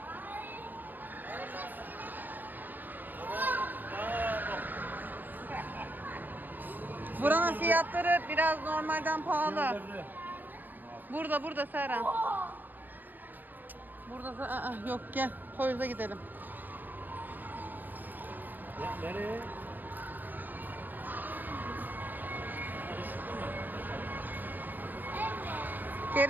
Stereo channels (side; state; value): left; late; 0.090 ms